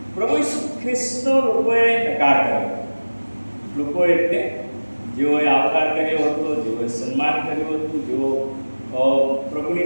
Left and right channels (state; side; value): inverted; both; correlation -1.00